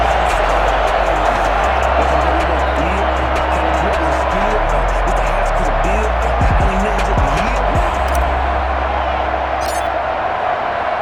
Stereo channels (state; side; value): identical; both; correlation 1.00